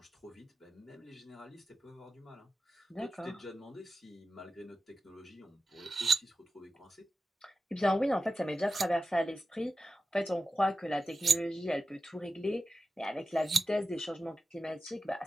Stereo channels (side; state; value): both; normal; correlation 0.93